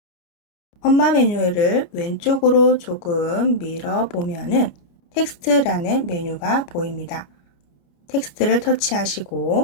엄마 메뉴를 왼쪽으로 조금 밀어보면은 텍스트라는 메뉴가 보입니다. 텍스트를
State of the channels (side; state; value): right; late; 29 ms